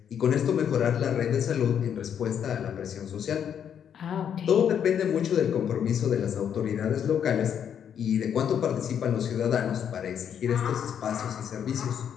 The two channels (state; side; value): quieter; right; 8.5 dB